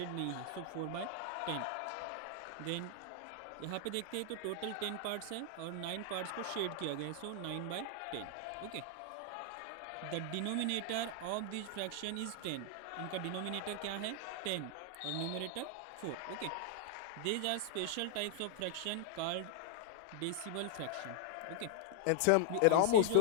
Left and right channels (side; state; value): both; different; correlation 0.00